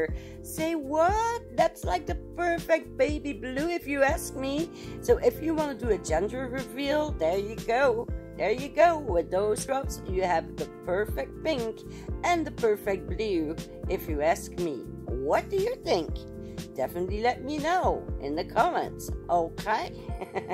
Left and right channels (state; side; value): identical; both; correlation 1.00